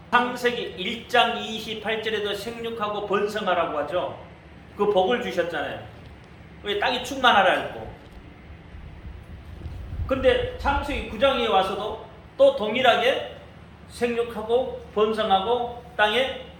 창세기 1장 28절에도 생육하고 번성하라고 하죠. 그 복을 주셨잖아요. 왜 땅이 충만하라 했고. 근데 창세기 9장에 와서도 또 동일하게 생육하고 번성하고 땅에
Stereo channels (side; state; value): both; identical; correlation 1.00